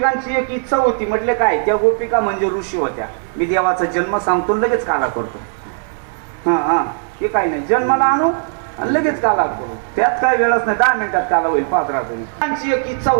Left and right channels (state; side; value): silent; left; digital silence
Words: एक इच्छा होती. म्हटले काय? त्या गोपिका म्हणजे ऋषी होत्या. मी देवाचा जन्म सांगतो लगेच काला करतो. हा ते काही नाही, जन्माला आणू आणि लगेच काला करू, त्यात काय वेळच नाही, 10 मिनिटात काला होईल. पाहत राहतो. त्यांची एक इच्छा